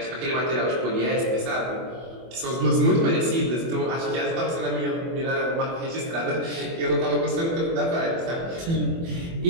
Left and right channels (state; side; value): late; left; 24 ms